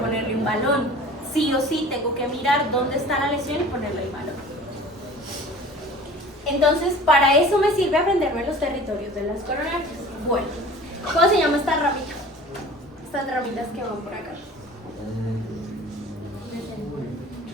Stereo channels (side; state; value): both; normal; correlation 0.43